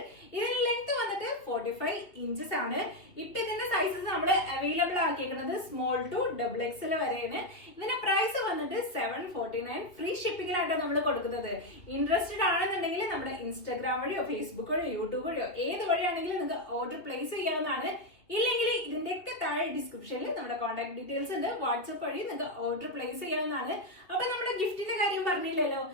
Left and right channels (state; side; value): late; right; 2.9 ms